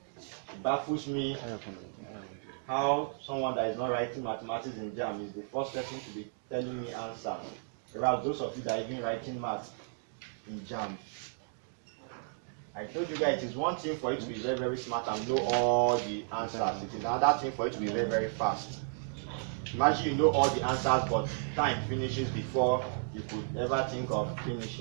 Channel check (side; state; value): left; silent; digital silence